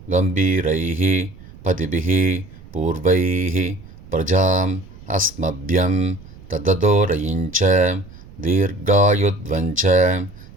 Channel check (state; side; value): noise; right; rumble, 19 dB below the sound